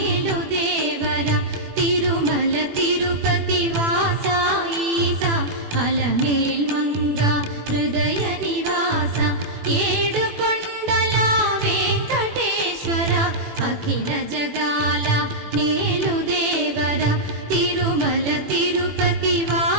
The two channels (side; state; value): left; late; 21 ms